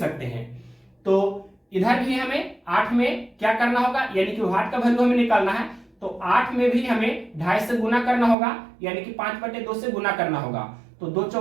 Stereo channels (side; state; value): left; drops out; at 8.3 s